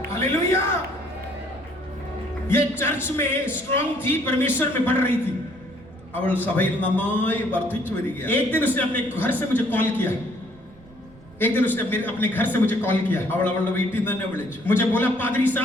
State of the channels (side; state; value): right; noise; rumble, 24 dB below the sound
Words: हालेलुया. ये चर्च में स्ट्रांग थी, परमेश्वर में बढ़ रही थी. അവൾ സഭയിൽ നന്നായി വർദ്ധിച്ചു വരികയാണ്. एक दिन उसने अपने घर से मुझे कॉल किया. एक दिन उसने अपने घर से मुझे कॉल किया. അവൾ അവളുടെ വീട്ടിൽ നിന്ന് തന്നെ വിളിച്ചു. मुझे बोला पादरी